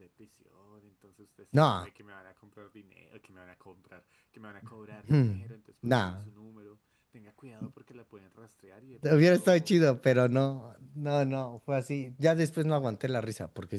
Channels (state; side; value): identical; both; correlation 1.00